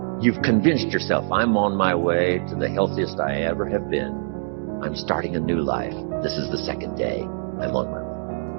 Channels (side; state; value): left; silent; digital silence